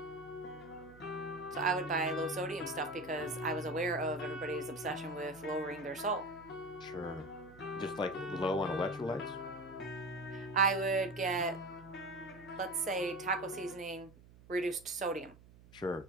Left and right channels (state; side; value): noise; right; hum, 22 dB below the sound